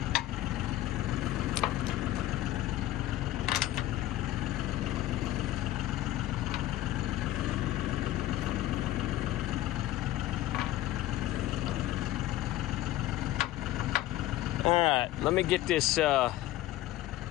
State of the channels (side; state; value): right; quieter; 14.9 dB